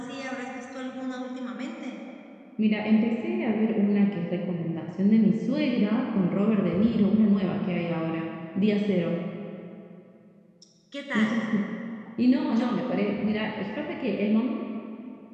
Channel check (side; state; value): both; identical; correlation 1.00